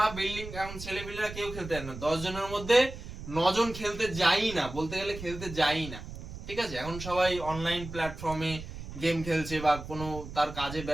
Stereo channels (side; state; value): right; noise; rumble, 11 dB below the sound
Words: বিল্ডিং, এখন ছেলেপিলেরা কেউ খেলতে যায় না, 10 জনের মধ্যে 9 জন খেলতে যাই না, বলতে গেলে খেলতে যাই না। ঠিক আছে, এখন সবাই অনলাইন প্ল্যাটফর্মে গেম খেলছে বা কোনো তার কাজে